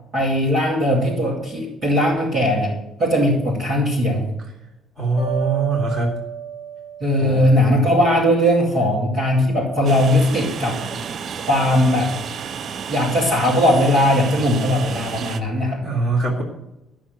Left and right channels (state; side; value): normal; both; correlation 0.54